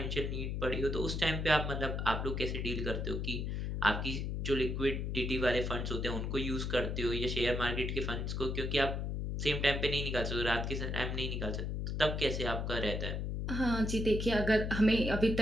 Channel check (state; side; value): noise; left; hum, 2 dB below the sound